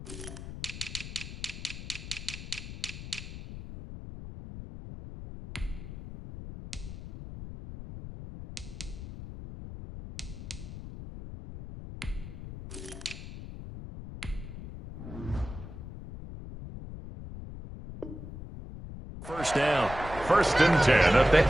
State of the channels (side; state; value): left; noise; rumble, 10 dB below the sound